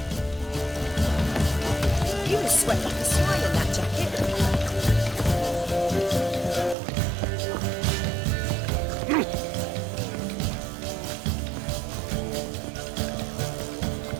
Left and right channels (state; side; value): drops out; left; at 6.8 s